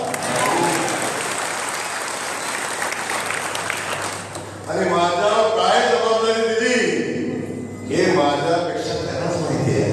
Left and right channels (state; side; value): identical; both; correlation 1.00